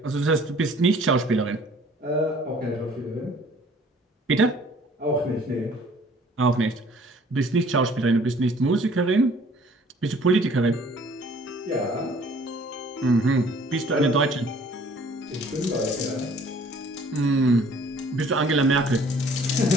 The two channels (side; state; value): both; normal; correlation 0.55